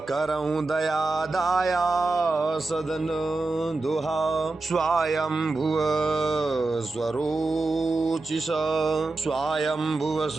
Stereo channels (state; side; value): quieter; left; 3.3 dB